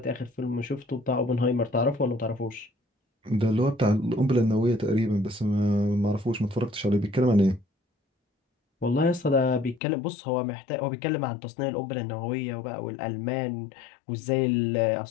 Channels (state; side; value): drops out; right; at 9.8 s